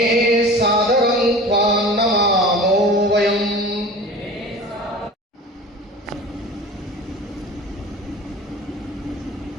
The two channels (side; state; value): both; normal; correlation 0.38